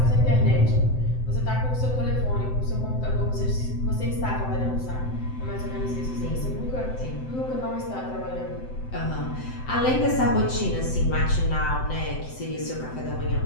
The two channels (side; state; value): right; late; 7.8 ms